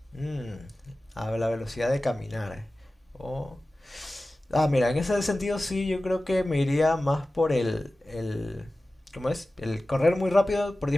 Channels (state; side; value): normal; both; correlation 0.96